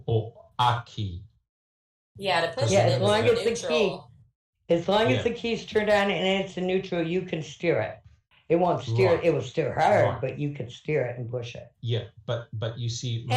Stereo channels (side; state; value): both; identical; correlation 1.00